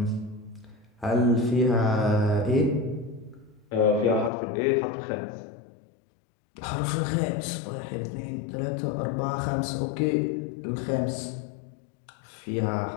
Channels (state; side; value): drops out; right; at 4.3 s